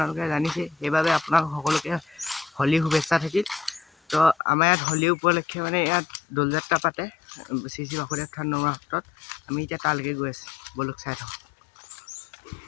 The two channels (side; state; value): right; drops out; at 4.4 s